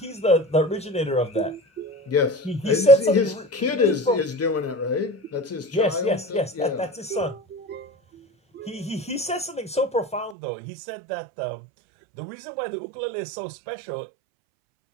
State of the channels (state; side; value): drops out; left; at 10.4 s